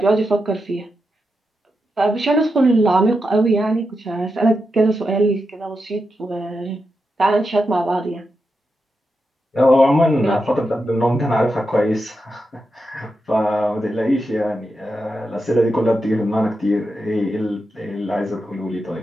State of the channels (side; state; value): both; normal; correlation 0.87